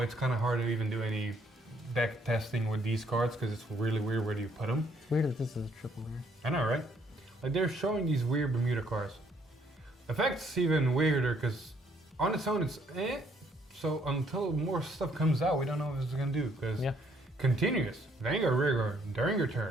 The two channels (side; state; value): both; normal; correlation 0.67